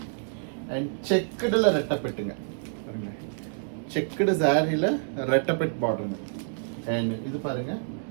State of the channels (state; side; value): silent; left; digital silence